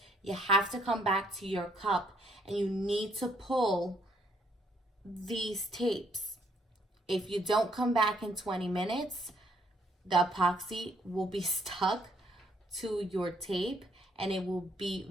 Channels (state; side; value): normal; both; correlation 0.68